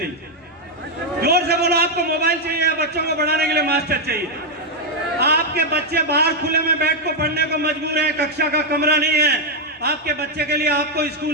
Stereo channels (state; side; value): normal; both; correlation 0.00